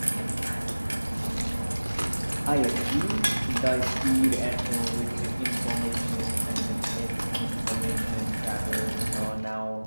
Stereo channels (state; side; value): inverted; both; correlation -1.00